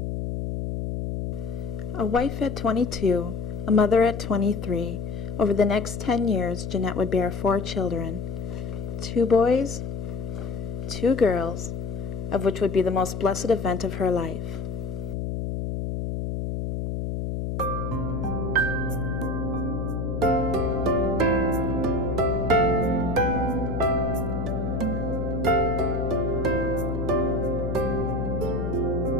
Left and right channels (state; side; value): noise; left; hum, 3 dB below the sound